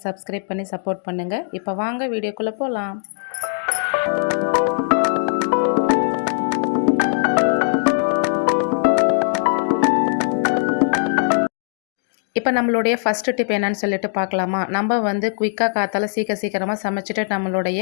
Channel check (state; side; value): silent; right; digital silence